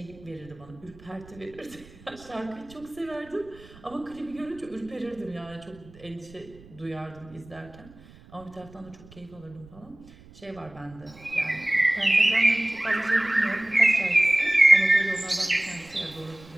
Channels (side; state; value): right; noise; rumble, 22 dB below the sound